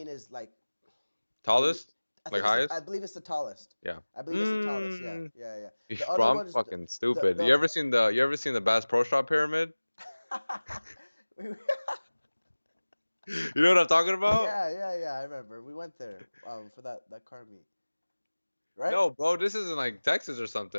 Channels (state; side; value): inverted; both; correlation -1.00